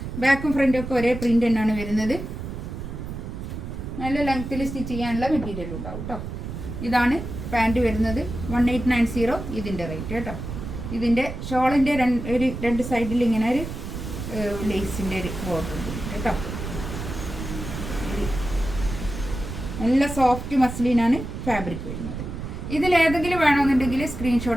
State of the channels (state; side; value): noise; right; rumble, 7 dB below the sound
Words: ബാക്കും ഫ്രണ്ടും ഒക്കെ ഒരേ പ്രിൻ്റ് തന്നെയാണ് വരുന്നത്. നല്ല ലെങ്ത്തിൽ സ്റ്റിച്ച് ചെയ്യാനുള്ള മെറ്റീരിയൽ ഉണ്ടാവും കേട്ടോ. ഇതാണ് പാൻറ്റ് വരുന്നത് 1890 ഇതിൻ്റെ റേറ്റ് കേട്ടോ. ഇതിൻ്റെ ഷോളിൻ്റെ ഒരു 2 സൈഡിൽ ഇങ്ങനെ ഒരു ലേസിൻ്റെ ഒരു ബോർഡർ ഉണ്ട് കേട്ടോ. നല്ല സോഫ്റ്റ് മസ്ലിനാണ് ഫാബ്രിക് വരുന്നത്. ഇതിലേതെങ്കിലും വേണമെന്നുണ്ടെങ്കിൽ